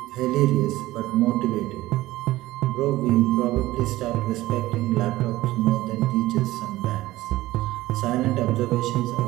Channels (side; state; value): left; quieter; 17.1 dB